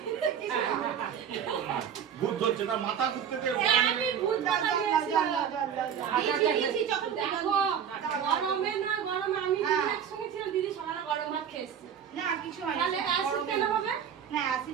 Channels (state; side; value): quieter; left; 8.2 dB